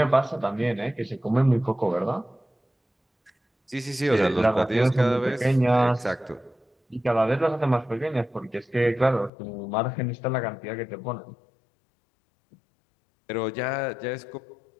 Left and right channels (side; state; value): right; drops out; at 9.3 s